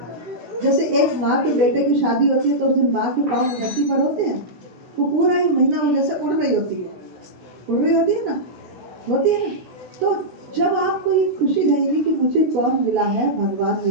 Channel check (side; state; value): left; late; 16 ms